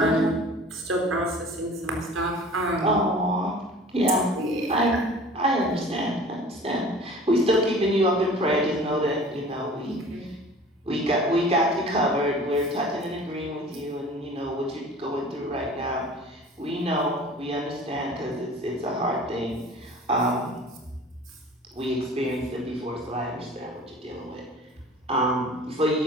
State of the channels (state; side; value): normal; both; correlation 0.44